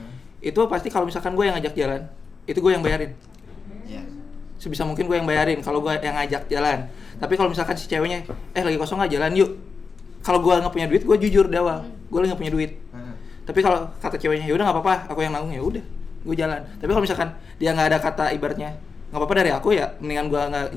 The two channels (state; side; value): quieter; right; 5.1 dB